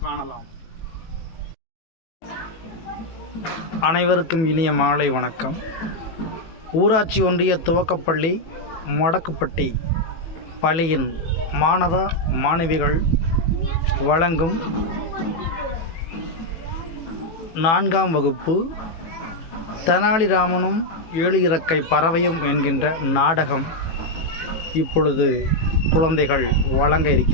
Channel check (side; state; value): right; late; 18 ms